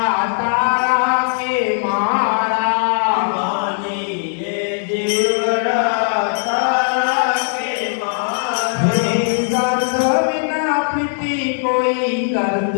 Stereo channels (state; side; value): silent; right; digital silence